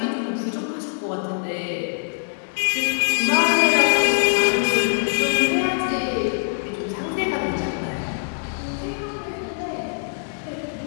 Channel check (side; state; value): right; silent; digital silence